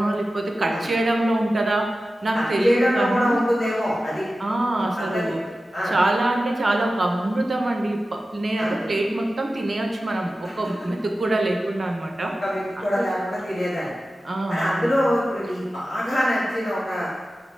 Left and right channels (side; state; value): both; normal; correlation 0.94